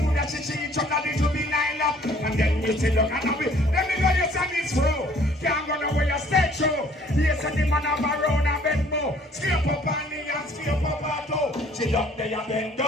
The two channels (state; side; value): normal; both; correlation 0.57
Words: that she each other, this will be lined up. And then we say, look, and we, let me know your son is through. Can't go nowhere, you stay true. Yes, and the man have a round and bend more. Scrape up on the and scrape up her toe. She up there and bend